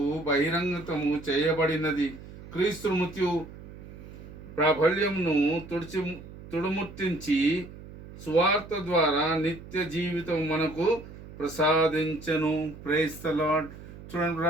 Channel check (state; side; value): noise; right; hum, 16 dB below the sound